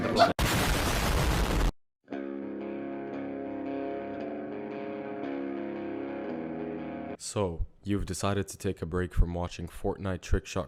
the black. So, you've decided to take a break from watching Fortnite trickshot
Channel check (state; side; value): identical; both; correlation 1.00